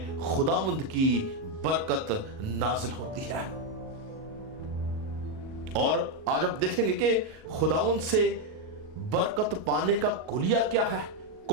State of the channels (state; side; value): late; left; 38 ms